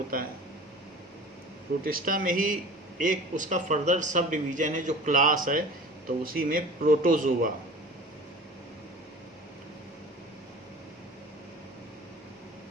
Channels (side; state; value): both; normal; correlation 0.41